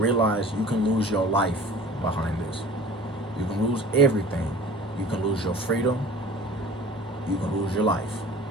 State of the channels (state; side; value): normal; both; correlation 0.43